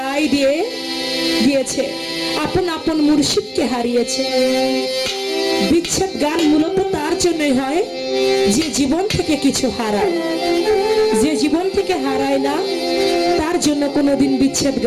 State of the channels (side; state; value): both; identical; correlation 1.00